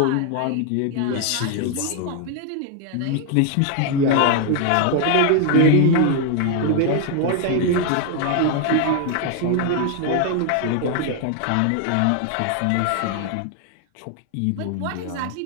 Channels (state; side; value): different; both; correlation 0.00